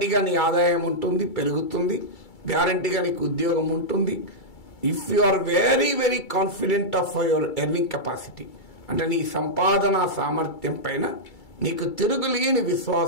నీ ఆదాయం ఉంటుంది, పెరుగుతుంది, గ్యారంటీగా నీకు ఉద్యోగం ఉంటుంది. If you are very very confident of your earning capacity, అంటే నీ సంపాదన సామర్థ్యం పైన నీకు తిరుగులేని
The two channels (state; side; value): late; right; 2.3 ms